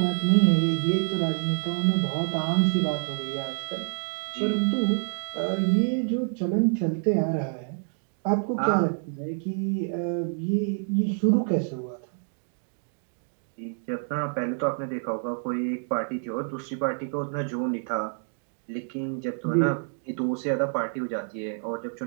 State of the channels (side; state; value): left; silent; digital silence